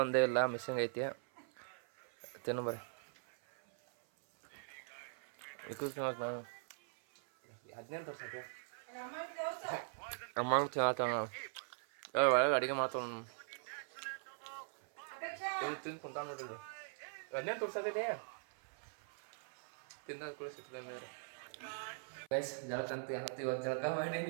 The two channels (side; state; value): left; silent; 50 dB below the other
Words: ಒಂದೇ ಇಲ್ಲ, ಮಿಸ್ಸಿಂಗ್ ಐತಿ. ತಿನ್ನು ಬರ್ರಿ. ನಾನು 15 ವರ್ಷಕ್ಕೆ ಅಮ್ಮಂಗೆ ತಿನ್ನತ್ತ ಒಳಗೆ ಅಡುಗೆ ಮಾಡ್ತಾವ. ತಿಂದು ಕುಂತ ನೋಡಿದ್ರು 15 ತೋರ್ಸತ್ತಿದೆ. ತಿಂದ ಕೂಡ ಸಿಗ್ತದೆ ಮೇಲೆ ಗೈಸ್. ಜಳಕಂತ ಏನತ್ತು ಇವತ್ತು ಜಳಕ ಮಾಡೀನಿ.